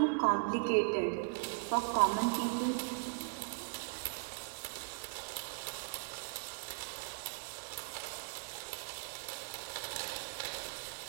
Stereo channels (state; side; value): silent; left; 52 dB below the other